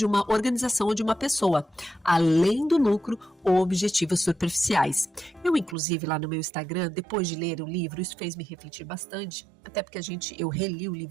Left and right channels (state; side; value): drops out; left; at 5.8 s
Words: uma organização ou de uma pessoa, além do lucro ou objetivos superficiais. Eu, inclusive, lá no meu Instagram, depois de ler o livro, isso fez me refletir bastante, até porque eu reli o